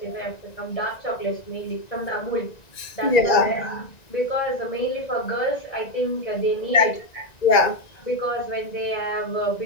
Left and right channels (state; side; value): late; right; 1.9 ms